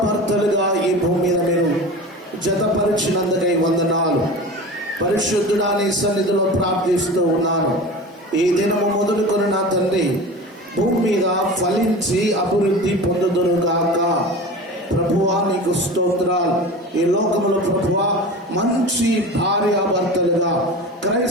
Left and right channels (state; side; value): normal; both; correlation 0.33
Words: ఈ భూమి మీద మీరు జతపరిచినందుకై వందనాలు. పరిశుద్ధుడా, నీ సన్నిధిలో ప్రార్థిస్తూ ఉన్నాను. ఈ దినము మొదలుకొని నా తండ్రి భూమి మీద ఫలించి అభివృద్ధి పొందుదురుగాక. ప్రభువా, నీకు స్తోత్రాలు. ఈ లోకములో ప్రభువా, మంచి భార్యాభర్తలుగా